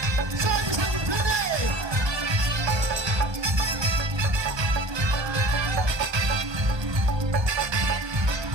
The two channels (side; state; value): left; late; 1.3 ms